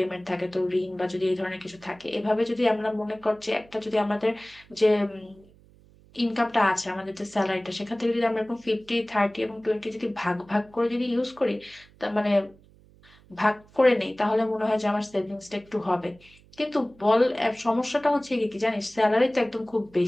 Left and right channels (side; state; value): right; noise; hum, 27 dB below the sound